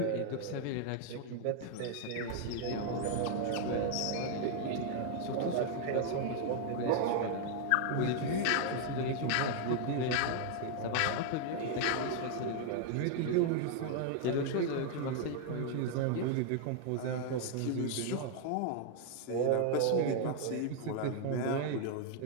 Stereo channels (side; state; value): both; different; correlation 0.00